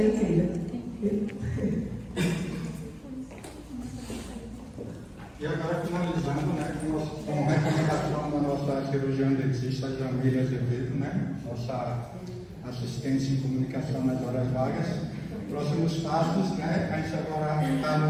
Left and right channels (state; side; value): identical; both; correlation 1.00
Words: incrível. E agora, finalizando, né, com recomendação da nossa cirurgiã dentista Jamila Azevedo, né, nossa assistência em comunicação nas horas vagas. Próximos passos, né, a gente agora está